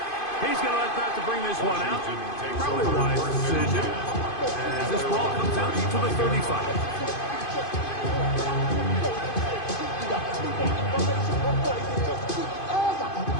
He's going to let that to bring this one out. Probably a wise decision as this ball comes out to the 35.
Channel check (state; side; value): late; right; 2.5 ms